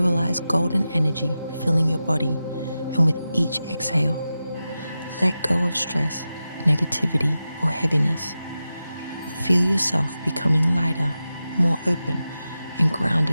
golden energy filling your body, and with each exhale, let go of stress, negativity, or heaviness. Feel yourself becoming lighter, more open, and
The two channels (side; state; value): both; inverted; correlation -0.92